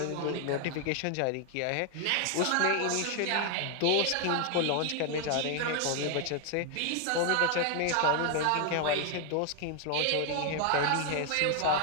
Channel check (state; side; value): different; both; correlation 0.00